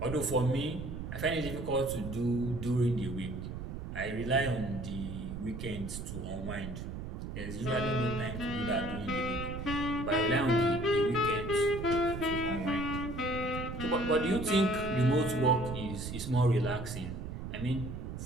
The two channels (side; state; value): right; noise; rumble, 7 dB below the sound